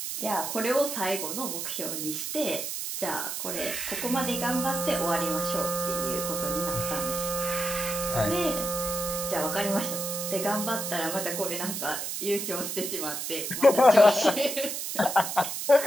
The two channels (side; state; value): right; noise; hiss, 4 dB below the sound